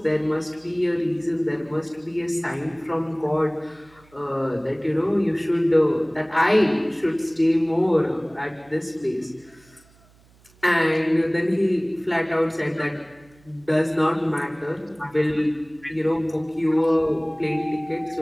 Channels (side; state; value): right; noise; hum, 29 dB below the sound